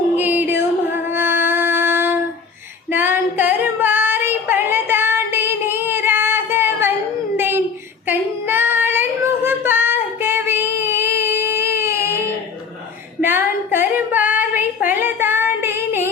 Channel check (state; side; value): quieter; right; 5.7 dB